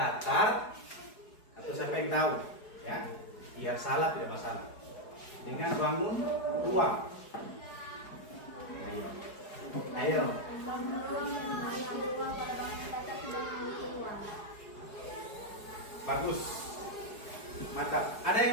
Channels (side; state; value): right; late; 4.8 ms